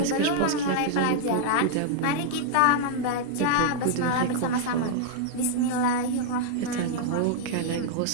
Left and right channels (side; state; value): both; different; correlation -0.01